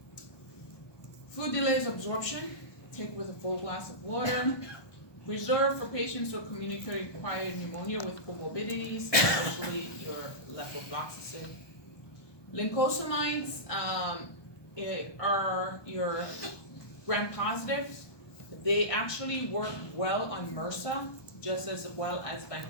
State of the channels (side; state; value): right; late; 1.2 ms